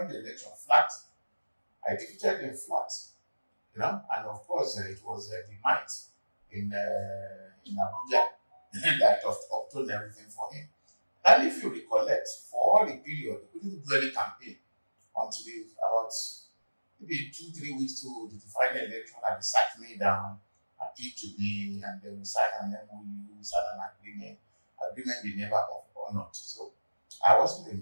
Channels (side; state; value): both; inverted; correlation -1.00